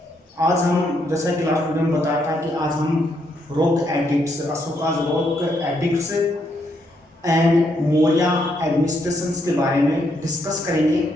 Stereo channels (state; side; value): normal; both; correlation 0.76